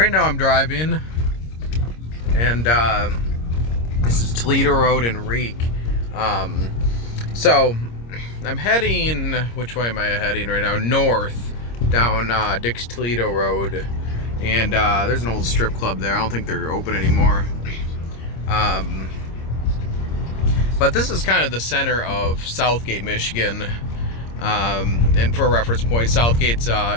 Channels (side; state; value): right; late; 26 ms